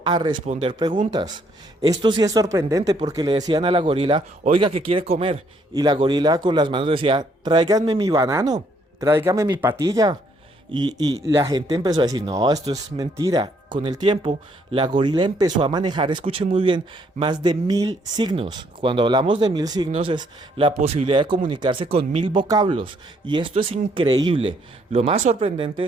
a responder preguntas. Esto sí es sorprendente, porque le decían a la gorila: oiga, ¿qué quiere comer? Y la gorila con las manos decía: tráiganme mi banano, tráigame mi patilla. Y la gente empezó a decir: no, esto es mentira. Con el tiempo, la gorila empezó a manejar, escuchen muy bien, más de 1000 signos. Cuando hablamos de 1000 signos es la posibilidad de comunicarse con 1000 vocablos. Y esto es increíble. Lo más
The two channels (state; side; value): normal; both; correlation 0.68